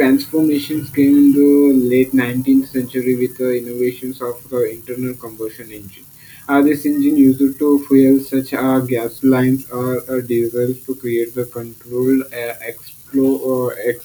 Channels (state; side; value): identical; both; correlation 1.00